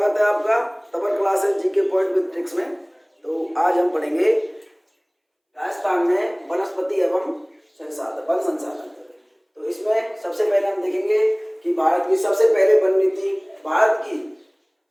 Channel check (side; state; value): both; identical; correlation 1.00